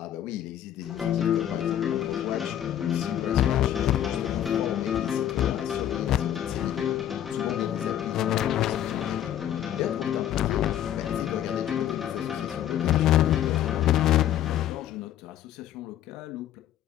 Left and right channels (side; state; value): right; quieter; 11.3 dB